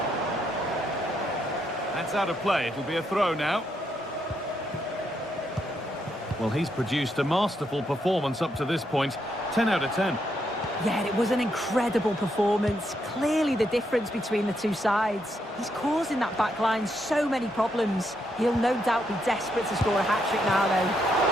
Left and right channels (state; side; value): normal; both; correlation 0.78